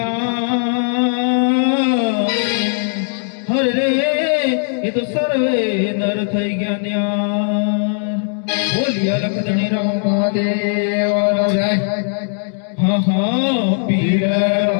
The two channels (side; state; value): right; silent; 67 dB below the other